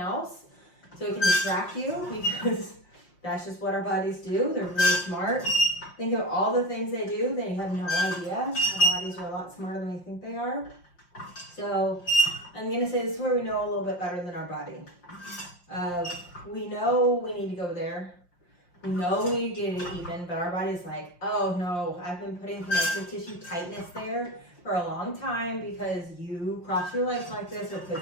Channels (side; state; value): right; late; 5.8 ms